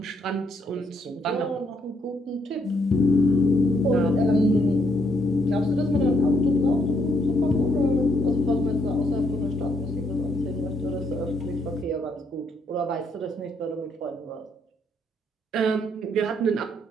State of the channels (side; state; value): both; normal; correlation 0.73